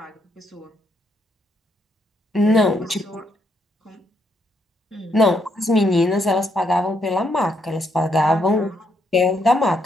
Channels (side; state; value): both; normal; correlation 0.75